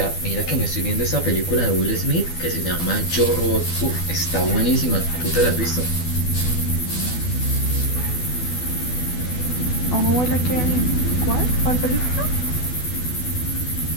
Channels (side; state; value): right; late; 12 ms